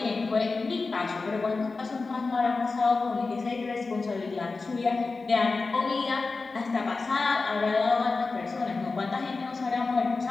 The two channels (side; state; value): right; quieter; 4.0 dB